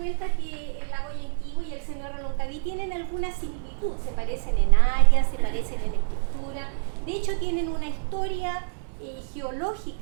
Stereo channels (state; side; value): silent; left; digital silence